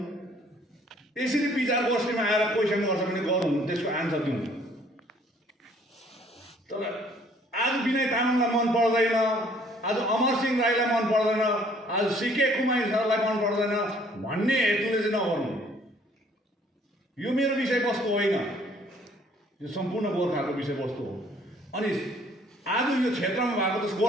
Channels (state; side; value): normal; both; correlation 0.60